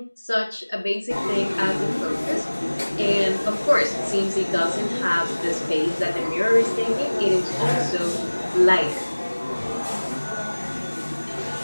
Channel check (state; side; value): inverted; both; correlation -1.00